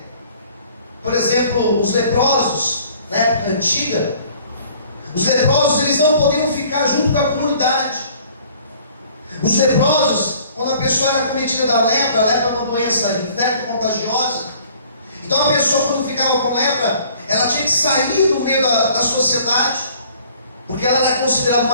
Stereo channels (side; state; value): both; inverted; correlation -0.54